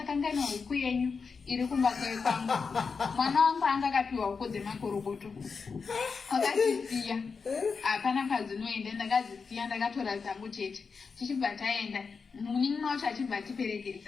huku yenyu iri kumba kwangu mwana wangu anga akapiwa huku dzemakorokoto akazisiya hapana kadzinoenda ndakazisiya ndakatora dzangu chete tichibva taenda muningi wacho achibva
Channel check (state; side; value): quieter; right; 5.2 dB